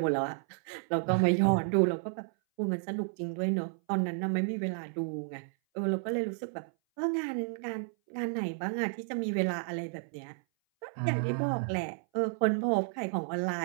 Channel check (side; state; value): left; silent; 57 dB below the other